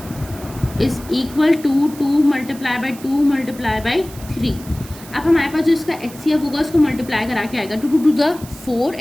is equal to 2 multiply by 2 multiply by 3। अब हमारे पास जो इसका HCF होगा उसको मल्टीप्लाई करा के आएगा 2 टू द 4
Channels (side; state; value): right; noise; hiss, 18 dB below the sound